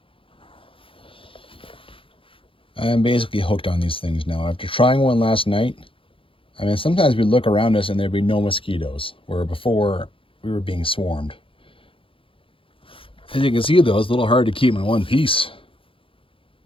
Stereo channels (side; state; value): right; late; 0.26 ms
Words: I'm basically hooked on these things now. After trying one last night, I mean, sometimes we'd look around us and there'd be no mosquitoes, where before we were being swarmed. As you can see though, it's a little hard to keep in one piece.